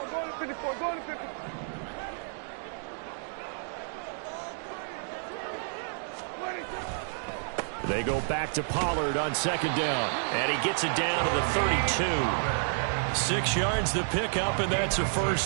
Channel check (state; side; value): silent; left; digital silence